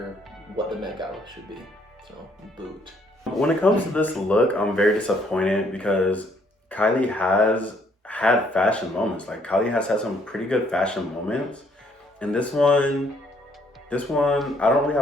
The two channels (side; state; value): both; normal; correlation 0.67